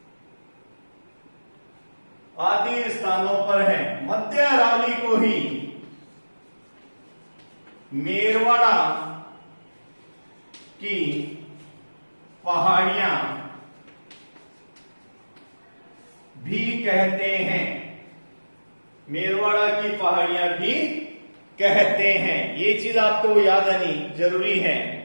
आदि स्थानों पर हैं। मध्य अरावली को ही मेरवाड़ा की पहाड़ियां भी कहते हैं, मेरवाड़ा की पहाड़ियां भी कहते हैं। ये चीज आपको याद आनी जरूरी है।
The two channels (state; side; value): inverted; both; correlation -1.00